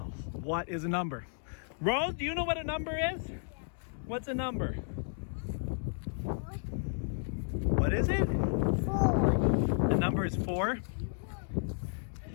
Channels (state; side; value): silent; right; digital silence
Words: What is a number? Rose, do you know what a number is? What's a number? What is it? 4. The number is 4.